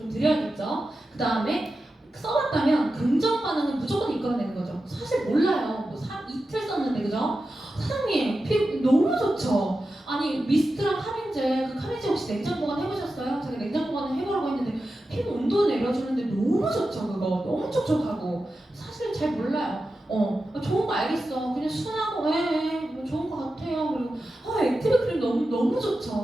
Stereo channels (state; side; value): normal; both; correlation 0.92